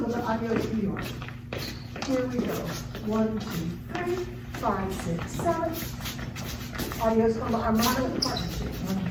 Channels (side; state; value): both; identical; correlation 1.00